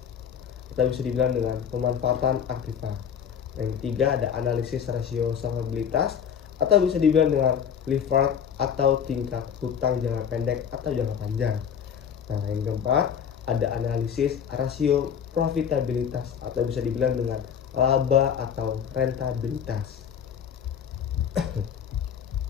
atau bisa dibilang dengan pemanfaatan aktiva. Yang ketiga ada analisis rasio solvabilitas atau bisa dibilang dengan leverage atau tingkat hutang jangka pendek atau jangka panjang. Nah, yang keempat ada analisis rasio profitabilitas atau bisa dibilang dengan laba atau rentabilitas.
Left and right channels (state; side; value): quieter; right; 7.9 dB